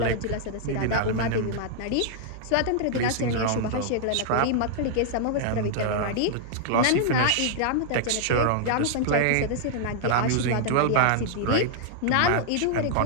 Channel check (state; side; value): different; both; correlation -0.01